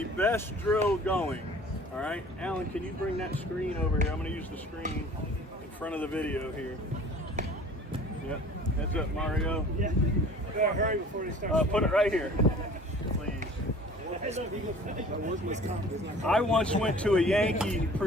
best drill going. All right, Alan, can you bring that screen over here? I'm going to use the screen in front of the video here. Yep. Heads up, Mario. Yeah. Gotta hurry before they start. Put it right here, please. I once went to a Yankee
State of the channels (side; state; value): both; normal; correlation 0.47